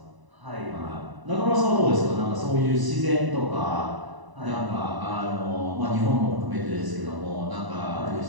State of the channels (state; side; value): late; left; 1.0 ms